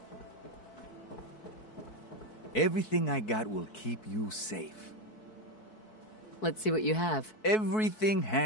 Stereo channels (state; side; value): late; right; 4.6 ms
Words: Everything I got will keep you safe. Let's see what you have. Everything